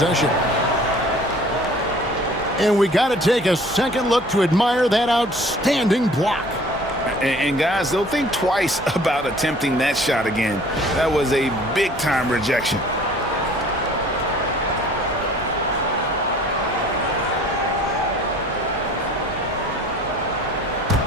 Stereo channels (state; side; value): normal; both; correlation 0.51